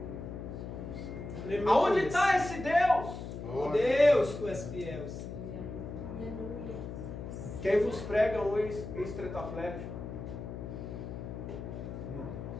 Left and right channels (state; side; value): noise; left; hum, 8 dB below the sound